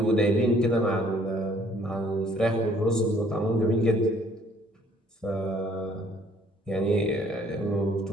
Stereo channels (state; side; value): normal; both; correlation 0.60